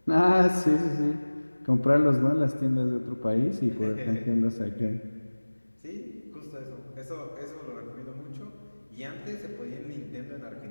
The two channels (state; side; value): inverted; both; correlation -1.00